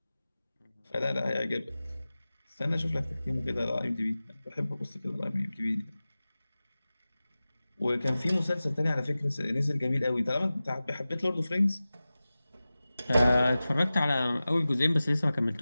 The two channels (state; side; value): inverted; both; correlation -0.96